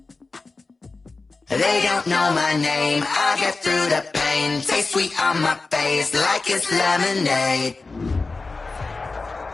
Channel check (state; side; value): quieter; right; 3.8 dB